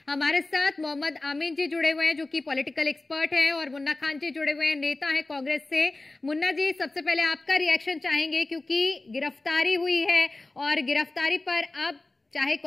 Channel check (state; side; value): quieter; right; 3.1 dB